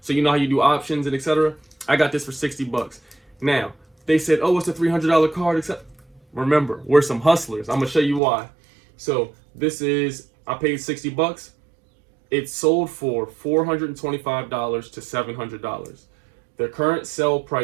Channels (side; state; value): left; drops out; at 8.2 s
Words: So you know how you do options and etc. I got this for $60. Now, they said, oh, it's a $300 card. Except, remember, we're some hustlers. I'm going to show you why. So this is, I paid $60. It sold for $425 to $700. The current sell